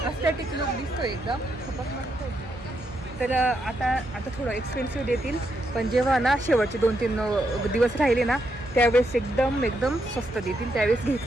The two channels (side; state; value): both; normal; correlation 0.80